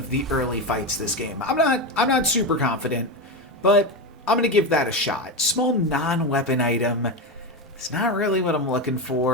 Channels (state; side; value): normal; both; correlation 0.15